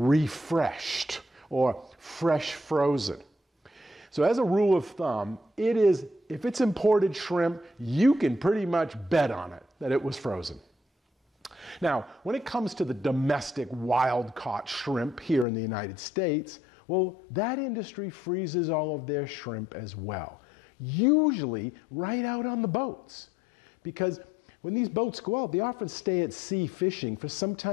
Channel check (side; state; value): right; drops out; at 15.5 s